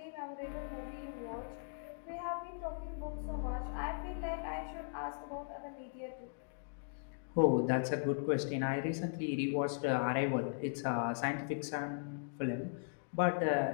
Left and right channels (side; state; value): right; silent; digital silence